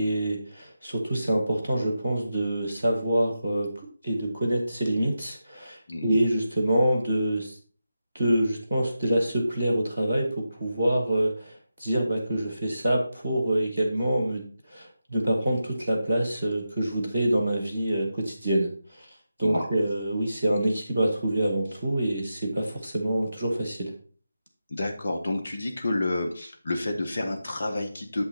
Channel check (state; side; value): inverted; both; correlation -0.89